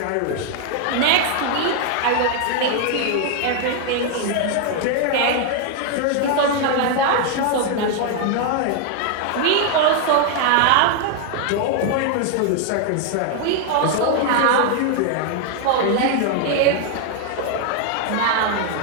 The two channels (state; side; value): different; both; correlation 0.00